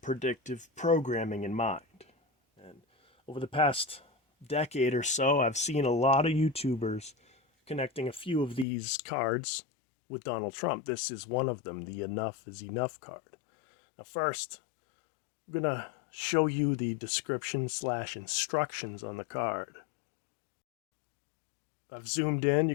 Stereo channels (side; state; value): right; drops out; at 8.7 s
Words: programming in mind. And over the past decade or so, I've seen a lot of YouTubers connecting a few of these cards with Donald Trump. This is one of them, the Enough is Enough card. Now first, I'm going to show you the description/instructions on the card. I've zoomed in,